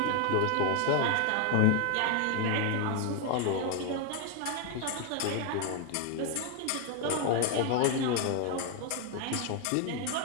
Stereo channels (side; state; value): both; different; correlation 0.01